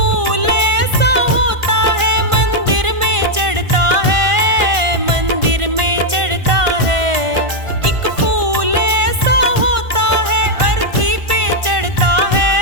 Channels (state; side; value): late; left; 1.5 ms